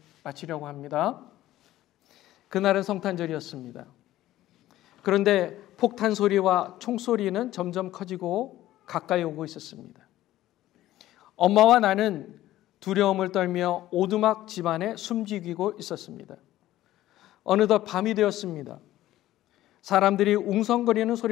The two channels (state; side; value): quieter; right; 14.6 dB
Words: 마치려고 합니다. 그날은 성탄절이었습니다. 그런데 폭탄 소리와 총소리는 점점 커지고 가까이 오고 있었습니다. 엄마와 나는 두려움을 떨며 오두막 집안에 숨지기고 있었습니다. 어느덧 밤이 되었습니다. 사람들이 웅성거리는